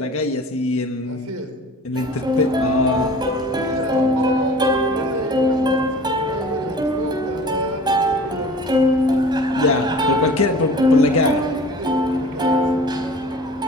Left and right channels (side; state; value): both; normal; correlation 0.43